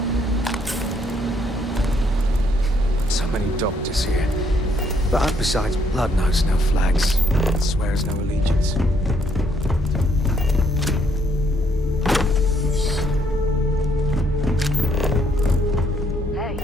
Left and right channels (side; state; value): both; normal; correlation 0.70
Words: So many doctors here. But besides, blood knows no flags, swears no allegiance. Hey.